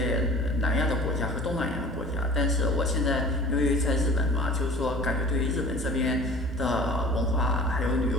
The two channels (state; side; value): normal; both; correlation 0.44